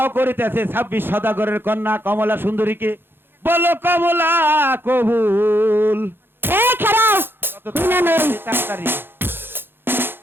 করিতেছে 26 সদাগরের কন্যা কমলা সুন্দরীকে বলো কমলা কবুল এই খারাপ কত না, না। তাড়াতাড়ি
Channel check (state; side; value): late; left; 0.10 ms